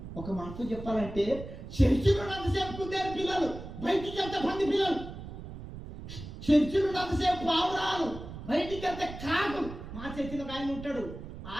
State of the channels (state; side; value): noise; right; rumble, 11 dB below the sound